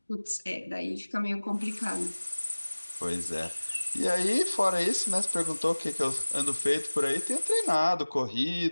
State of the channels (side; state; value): both; inverted; correlation -1.00